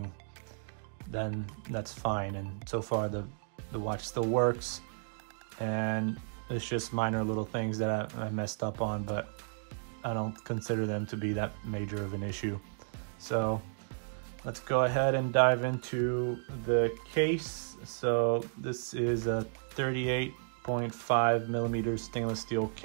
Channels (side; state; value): left; silent; digital silence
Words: then that's fine. And so far the watch still works, and it's just minor little things that I messed up on, but I don't consider them to be that major of an issue. So let's go ahead and dive into the case. So this is a 38.5 millimeter stainless steel